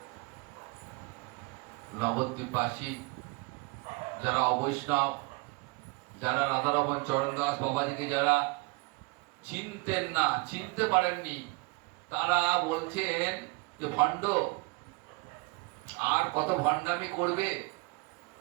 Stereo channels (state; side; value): quieter; left; 26.4 dB